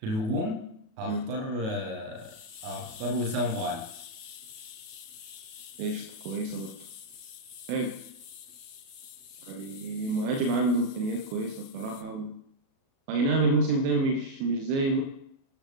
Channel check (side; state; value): left; late; 36 ms